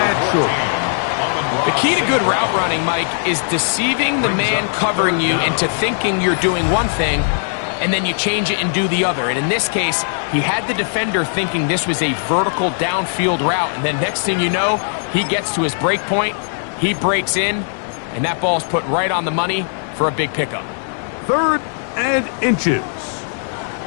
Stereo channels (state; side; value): silent; right; 67 dB below the other